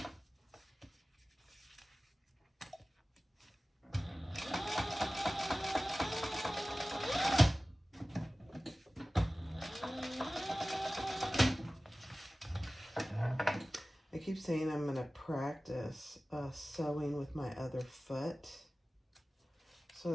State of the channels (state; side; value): normal; both; correlation 0.97